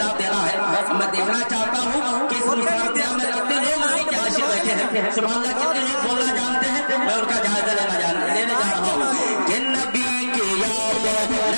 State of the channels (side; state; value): both; inverted; correlation -1.00